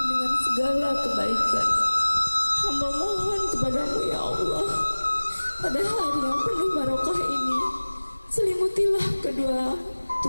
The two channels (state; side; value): inverted; both; correlation -1.00